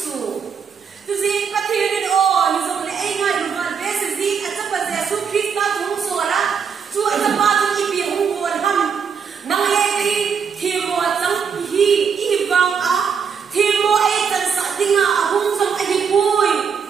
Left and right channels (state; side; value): quieter; left; 6.5 dB